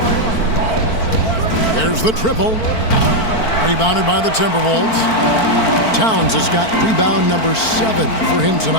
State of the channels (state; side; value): late; right; 4.5 ms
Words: There's the triple. Rebounded by the Timberwolves. Towns has got rebound number 7 for him